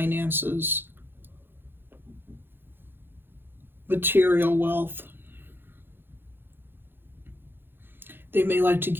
material wealth. They may like to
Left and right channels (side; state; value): left; late; 0.10 ms